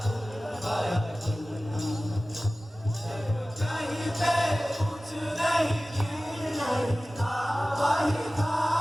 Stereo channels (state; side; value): normal; both; correlation 0.97